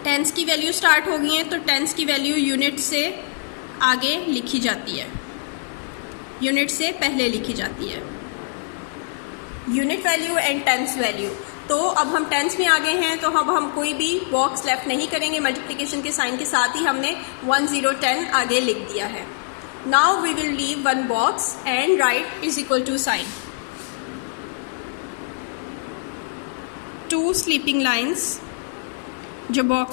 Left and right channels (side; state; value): right; silent; 62 dB below the other